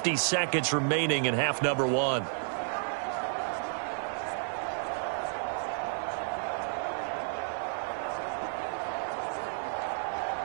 seconds remaining in half number 1.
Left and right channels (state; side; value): silent; left; 55 dB below the other